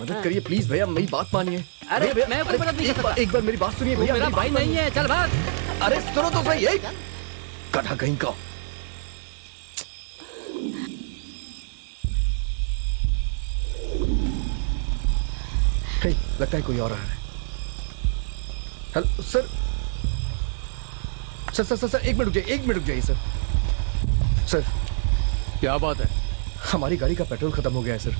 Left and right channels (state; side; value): silent; left; digital silence